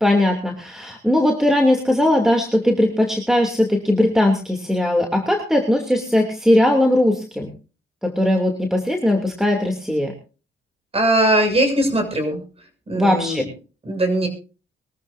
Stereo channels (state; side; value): normal; both; correlation 0.81